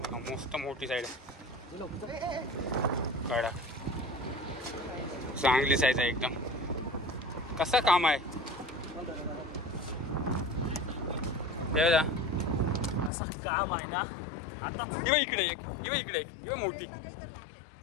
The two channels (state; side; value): drops out; right; at 13.1 s